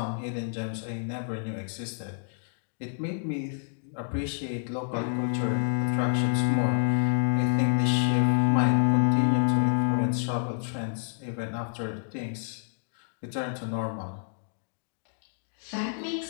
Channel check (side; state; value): right; silent; digital silence